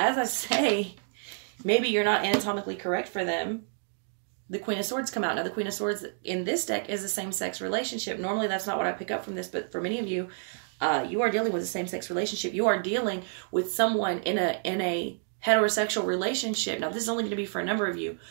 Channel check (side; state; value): left; silent; digital silence